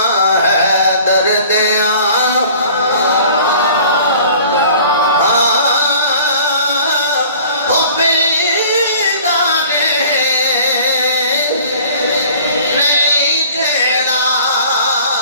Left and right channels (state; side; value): inverted; both; correlation -0.49